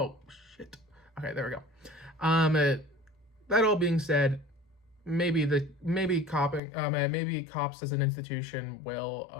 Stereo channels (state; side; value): drops out; right; at 6.6 s